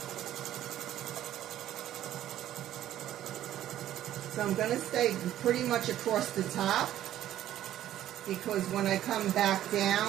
So I'm going to stay pretty much across the top because when I come back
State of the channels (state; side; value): quieter; left; 12.4 dB